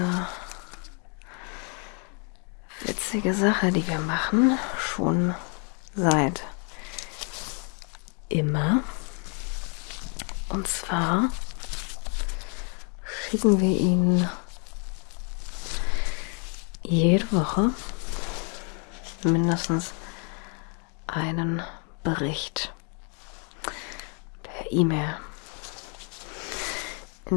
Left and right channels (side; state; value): right; quieter; 38.8 dB